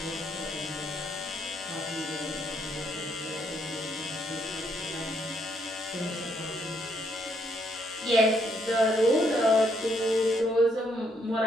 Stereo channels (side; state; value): both; normal; correlation 0.73